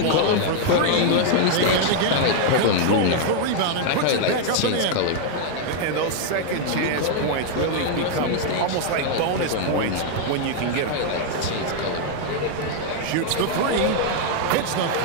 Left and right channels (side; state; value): both; different; correlation 0.00